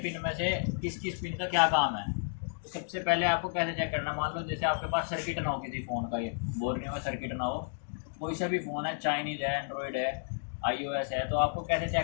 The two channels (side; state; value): right; silent; digital silence